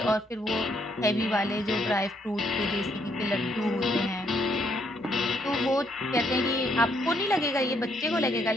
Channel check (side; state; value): both; normal; correlation 0.72